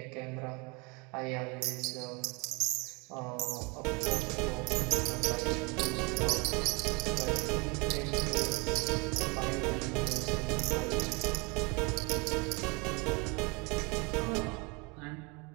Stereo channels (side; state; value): left; quieter; 29.2 dB